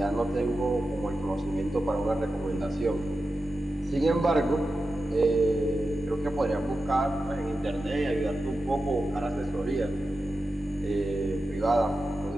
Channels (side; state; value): both; normal; correlation 0.91